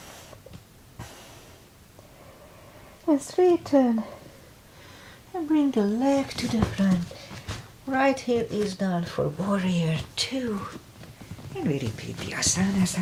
And straighten. And bring the leg to the front. Right heel is down for warrior 2. And we repeat the asanas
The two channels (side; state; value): both; identical; correlation 1.00